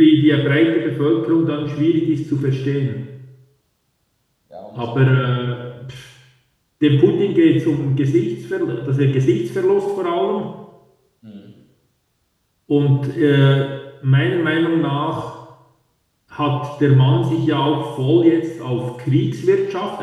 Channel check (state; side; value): identical; both; correlation 1.00